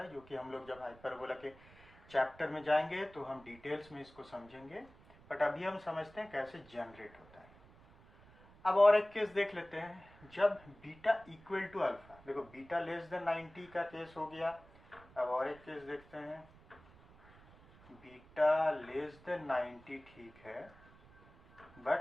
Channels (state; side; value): noise; right; rumble, 24 dB below the sound